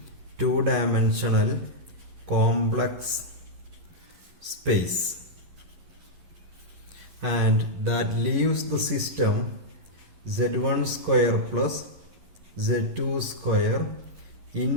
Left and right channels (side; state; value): left; late; 11 ms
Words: two-dimensional complex space, and that leaves the system Z1 square plus Z2 square